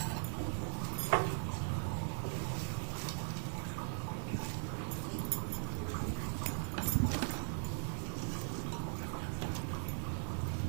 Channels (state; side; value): silent; left; 51 dB below the other